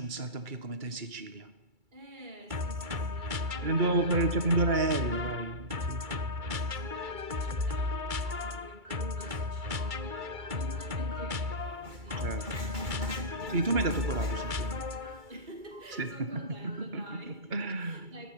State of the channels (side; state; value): left; late; 2.3 ms